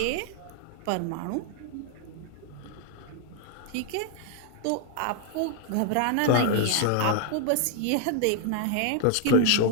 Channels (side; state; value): both; different; correlation 0.00